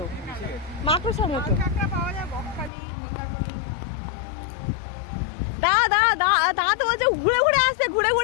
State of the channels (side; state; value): right; drops out; at 2.7 s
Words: মাকড়সার মতো। দাঁড়া তো বলছে ঘুরে আসছে ঘুরে।